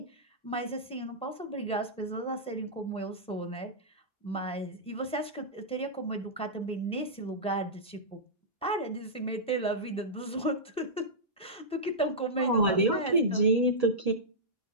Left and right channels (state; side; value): normal; both; correlation -0.12